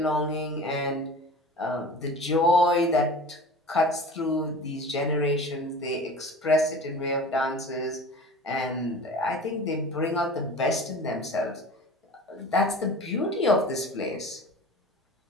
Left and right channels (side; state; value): both; normal; correlation 0.38